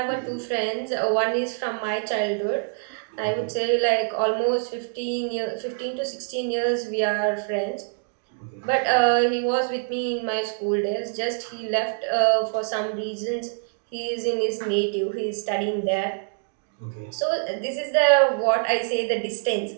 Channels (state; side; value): silent; left; digital silence